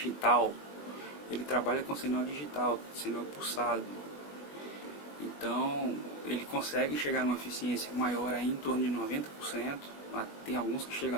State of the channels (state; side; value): late; right; 20 ms